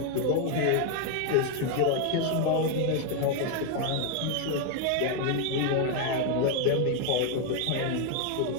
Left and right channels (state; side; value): different; both; correlation 0.01